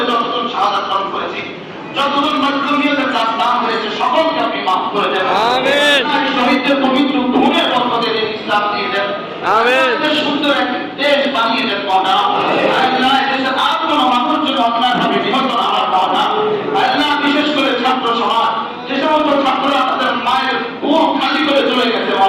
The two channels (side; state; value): both; identical; correlation 1.00